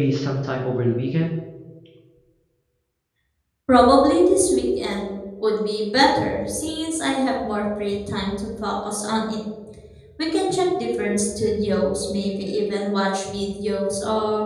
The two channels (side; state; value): both; identical; correlation 1.00